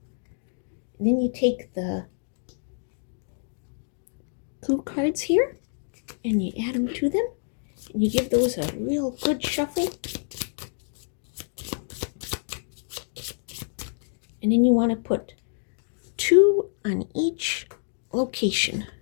And then you take the clue cards here and you add them to them, and you give those a real good shuffle. And then you want to put 2 on each location.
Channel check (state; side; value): silent; right; digital silence